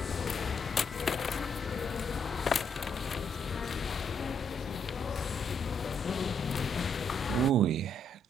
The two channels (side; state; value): both; normal; correlation 0.74